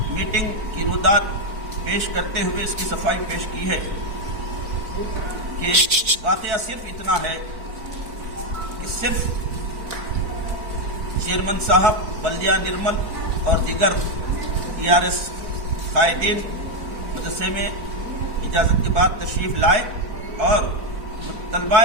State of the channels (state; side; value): late; left; 4.5 ms